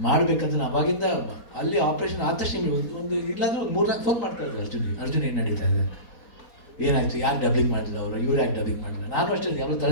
ಮಾಡಬೇಕಂತ ನಾನು ಅವಾಗಿಂದ ಅಲ್ಲಿ ಆಪ್ರೇಷನ್ ಆದ ತಕ್ಷಣ ಒಂದು ಇಲ್ಲಾಂದ್ರೆ ಒಂದು 3-4 ಫೋನ್ ಮಾಡ್ತಾ ಇದ್ದೆ ಅರ್ಜುನ್ ಏನು ನಡೀತಾ ಇದೆ, ಏನಾಯ್ತು, ಯಾಕೆ ಡಬ್ಬಿಂಗ್ ಮಾಡಲಿಲ್ಲ ಅವರು, ಇವ್ರು ಯಾಕೆ ಡಬ್ಬಿಂಗ್ ಮಾಡಲಿಲ್ಲ. ನಾನು ಅಷ್ಟೇ ಎಲ್ಲ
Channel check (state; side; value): late; right; 4.2 ms